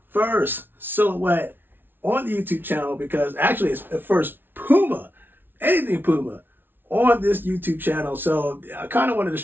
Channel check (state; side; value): late; left; 0.099 ms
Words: first silhouette on the YouTube channel because actually it's the first Puma, anything Puma, on this YouTube channel. So I kind of wanted to